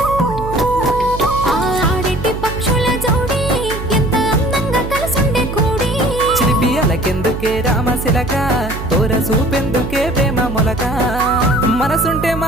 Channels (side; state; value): right; noise; hum, 8 dB below the sound